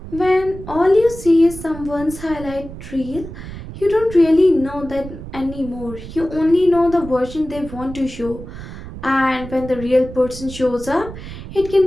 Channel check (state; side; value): noise; right; rumble, 12 dB below the sound